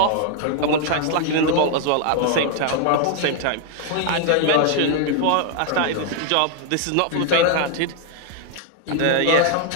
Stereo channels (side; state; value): both; different; correlation 0.00